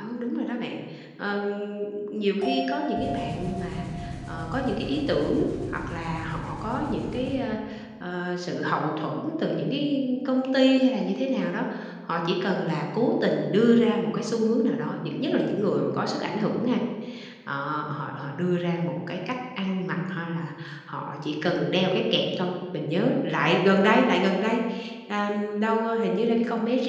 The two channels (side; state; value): both; identical; correlation 1.00